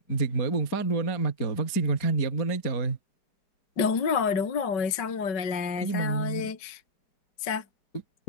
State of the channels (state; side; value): late; right; 5.2 ms